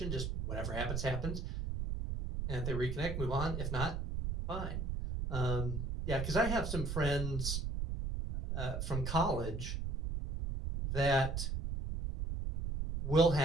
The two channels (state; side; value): noise; right; rumble, 2 dB below the sound